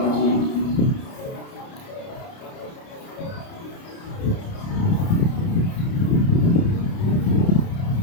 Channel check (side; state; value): right; late; 30 ms